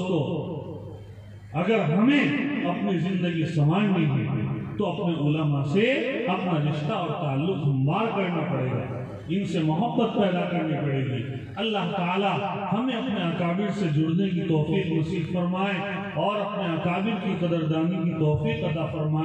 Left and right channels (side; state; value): both; identical; correlation 1.00